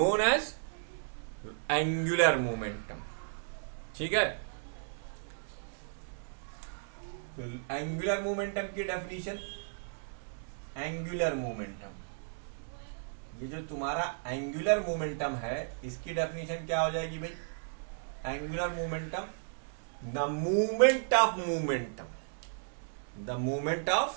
as angular momentum. ठीक है, एंगुलर मोमेंटम की डेफिनेशन, एंगुलर मोमेंटम, ये जो तुम्हारा एंगुलर मोमेंटम है इसकी डेफिनेशन क्या हो जाएगी भाई? Angular momentum, the movement of momentum, the movement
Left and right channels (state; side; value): silent; left; digital silence